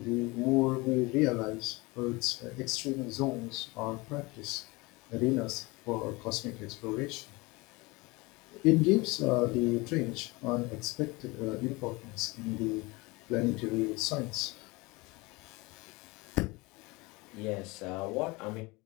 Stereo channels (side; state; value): right; quieter; 24.0 dB